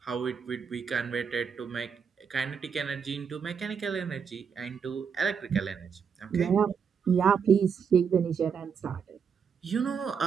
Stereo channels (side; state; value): left; quieter; 6.7 dB